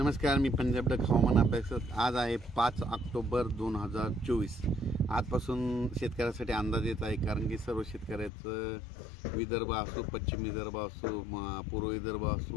मी पंजाब डक हवामान अभ्यासक। आज आहे 5 ऑक्टोबर 2024। आजपासून शेतकऱ्यासाठी अंदाज येत आहे, कारण की सर्व शेतकऱ्याचं विदर्भ असो, पश्चिम विदर्भ असो, पूर्व विदर्भ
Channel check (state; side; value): drops out; right; at 8.3 s